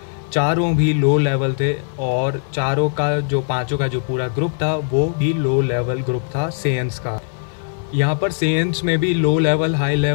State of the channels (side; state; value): right; silent; 58 dB below the other